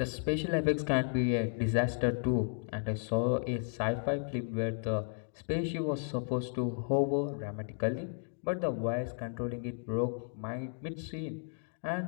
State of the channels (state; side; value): silent; right; 55 dB below the other